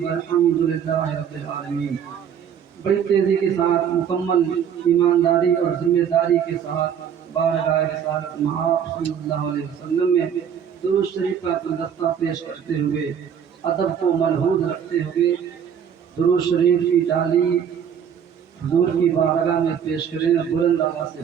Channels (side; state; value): left; quieter; 8.2 dB